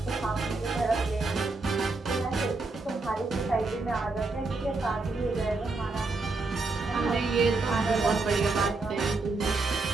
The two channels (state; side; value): quieter; left; 3.6 dB